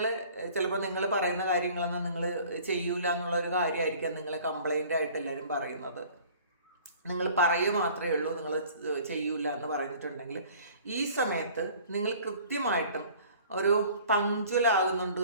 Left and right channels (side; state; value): both; inverted; correlation -0.49